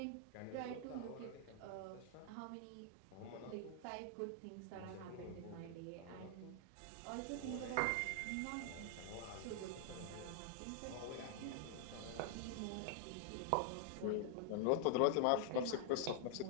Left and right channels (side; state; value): both; different; correlation 0.00